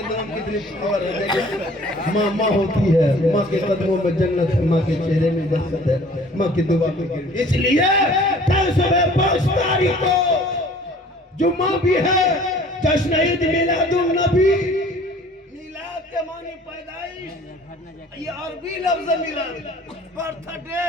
नाम कितनी पावर है। माँ माँ होती है, माँ के कदमों में जन्नत है, माँ के चेहरे में बरकत है, माँ की दुआ में। इसलिए 5 तारीख को जुम्मा भी है, जश्न ईद मिलादुन नबी। मिलाद के मानी पैदाइश, ये अरबी लफ्ज मिलाद, बर्थडे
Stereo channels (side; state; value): both; normal; correlation 0.51